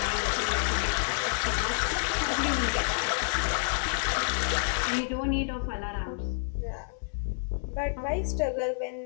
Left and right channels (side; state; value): right; silent; digital silence